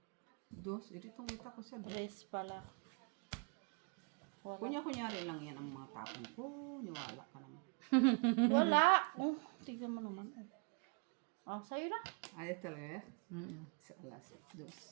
Dos? Ito itong kita ko sa dos. Tres pala. Kunyari lang yan ang mga tapon ko. Niwala ka naman. Wala. Oh, tignan mo naman. Oh, sa'yo na. Ayos talaga eh. Mm-mm. Sa alas. Dos.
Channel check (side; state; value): left; quieter; 33.6 dB